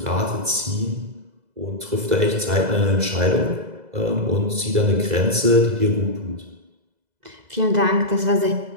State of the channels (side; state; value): left; late; 2.0 ms